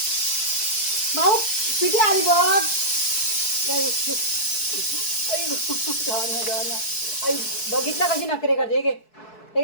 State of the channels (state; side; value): late; right; 4.6 ms